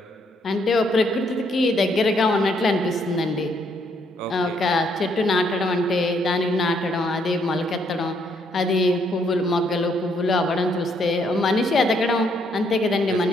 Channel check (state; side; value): normal; both; correlation 0.71